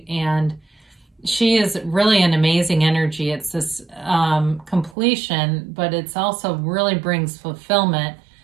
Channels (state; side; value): drops out; left; at 5.0 s